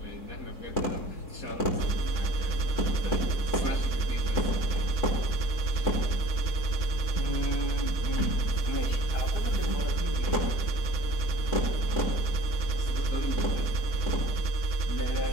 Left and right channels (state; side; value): late; right; 3.7 ms